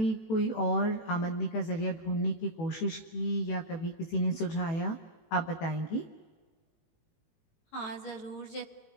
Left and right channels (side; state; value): right; late; 18 ms